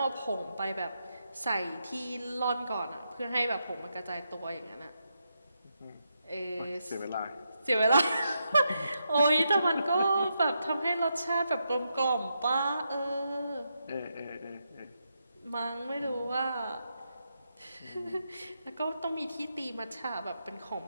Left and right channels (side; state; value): both; inverted; correlation -0.83